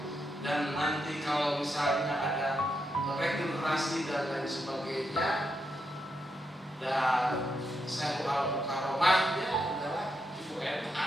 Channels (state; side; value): normal; both; correlation 0.83